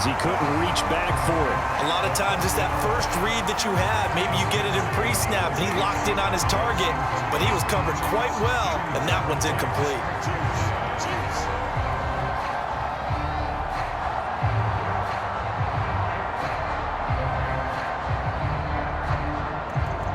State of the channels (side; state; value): both; identical; correlation 1.00